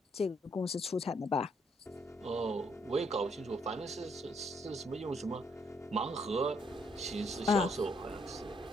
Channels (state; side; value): normal; both; correlation 0.71